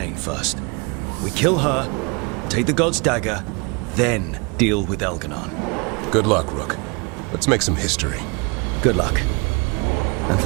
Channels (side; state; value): left; quieter; 30.5 dB